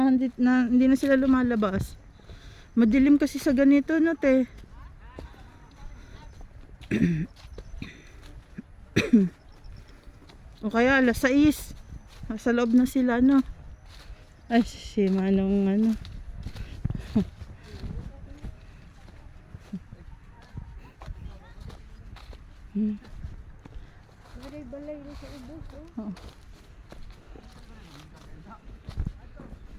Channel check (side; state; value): both; identical; correlation 1.00